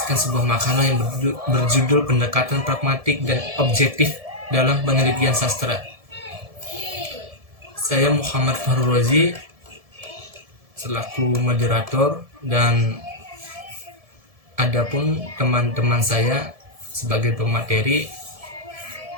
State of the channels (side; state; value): left; late; 1.7 ms